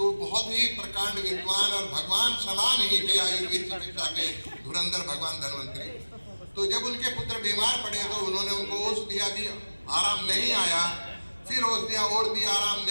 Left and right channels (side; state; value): both; inverted; correlation -1.00